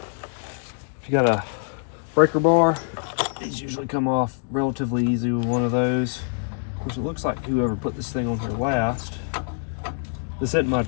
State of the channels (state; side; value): silent; right; digital silence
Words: If you got a breaker bar, these usually come off relatively easy with one of those. Of course, it looks like whoever put this thing on here last, this isn't my